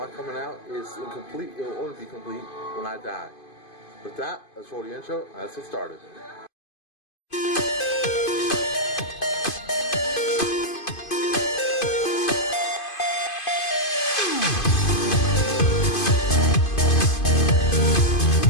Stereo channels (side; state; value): right; late; 2.5 ms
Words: coming out is incomplete. It will only be complete when I die. With that, let's roll the intro and let's get started.